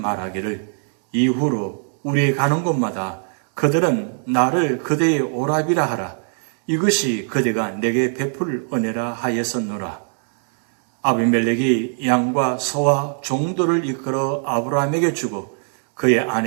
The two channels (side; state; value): left; silent; 65 dB below the other